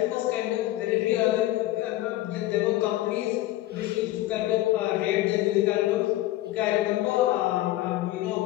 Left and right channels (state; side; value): quieter; right; 15.9 dB